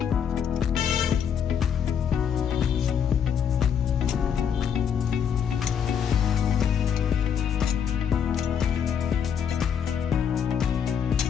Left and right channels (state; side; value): quieter; right; 7.8 dB